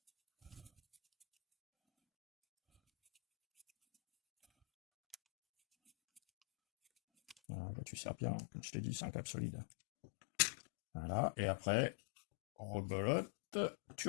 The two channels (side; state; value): right; drops out; at 7.4 s